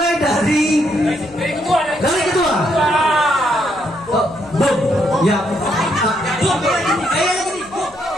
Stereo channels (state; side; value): noise; left; hum, 26 dB below the sound